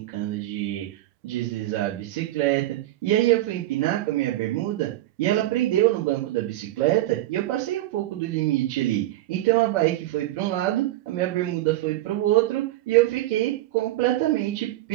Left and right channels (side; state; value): left; quieter; 15.7 dB